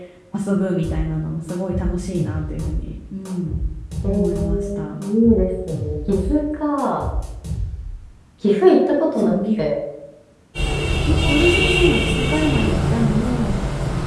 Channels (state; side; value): identical; both; correlation 1.00